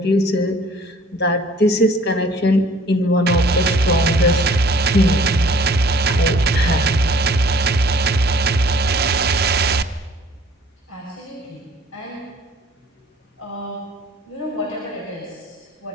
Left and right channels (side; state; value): both; normal; correlation 0.54